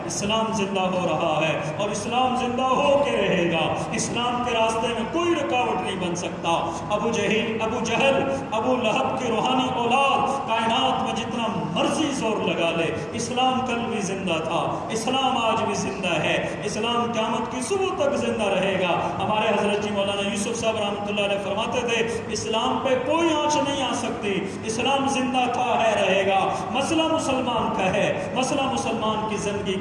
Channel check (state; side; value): identical; both; correlation 1.00